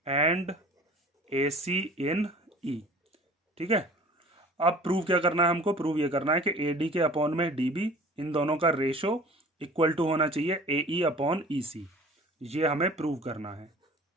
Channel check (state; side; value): normal; both; correlation 0.45